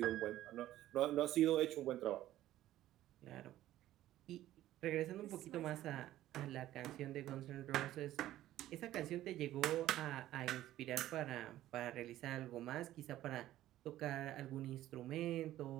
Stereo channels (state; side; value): quieter; left; 14.0 dB